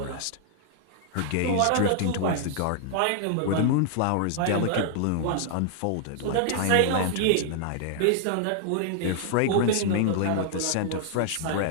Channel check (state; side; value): different; both; correlation -0.01